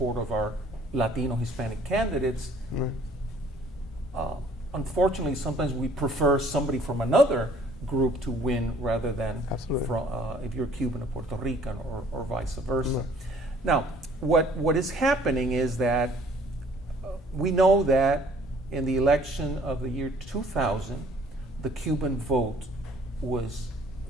of our Latino Hispanic candidates. Unfortunately, sometimes we prefer somebody from another group to win rather than from, if you're Cuban or Puerto Rican or vice versa. Now, what is happening is that we know that in the election of the year 2000, the Cuban vote was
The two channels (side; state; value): both; normal; correlation 0.57